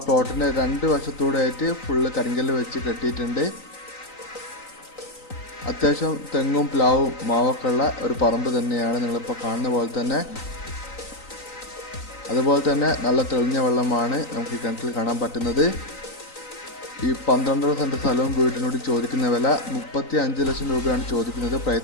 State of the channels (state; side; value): late; right; 3.9 ms